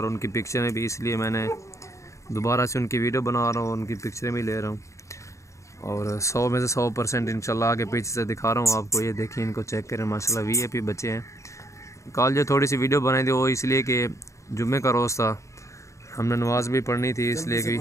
उनकी पिक्चरें भी, इसलिए मैंने दोबारा से उनकी वीडियो बना रहा हूँ, उनकी पिक्चरें भी ले रहा हूँ और 100 में से 100% इंशाल्लाह आगे पीछे से दिखा रहा हूँ आपको। ये देखिए, इनको चेक करें, माशाल्लाह VIP बच्चे हैं। कल जो थोड़ी सी वीडियो बनाई थी वो इसलिए कि जुम्मे का रोज़ था, हमने नमाज भी पढ़नी थी, इसलिए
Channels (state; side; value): late; right; 0.15 ms